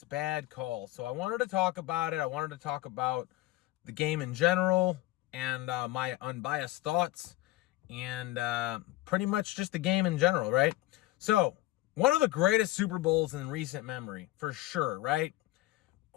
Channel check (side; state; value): right; quieter; 17.3 dB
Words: bad call. So I wanted to talk about it. I wanted to talk about the game in general and my unbiased thoughts and pretty much just the game in general, right? So, one of the greatest Super Bowls in recent memory, for sure, right?